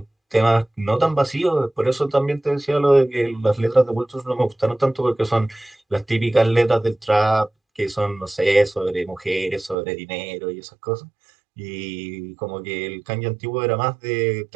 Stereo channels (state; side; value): drops out; left; at 9.8 s